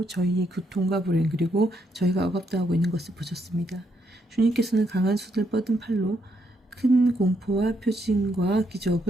저희의 고통과 불행 그리고 저희가 억압당하고 있는 것을 보셨습니다. 주님께서는 강한 숫을 뻗은 팔로 큰 공포와 표징과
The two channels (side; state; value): both; normal; correlation 0.76